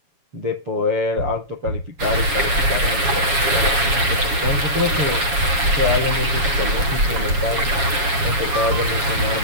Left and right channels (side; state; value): left; late; 7.2 ms